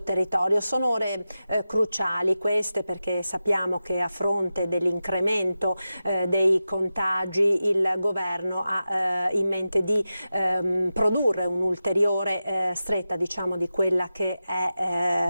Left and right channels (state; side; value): inverted; both; correlation -0.93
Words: territorio. Sono ore cruciali queste, perché sappiamo che a fronte dell'incremento dei contagi il governo ha in mente di produrre un'ulteriore stretta, diciamo, di quella che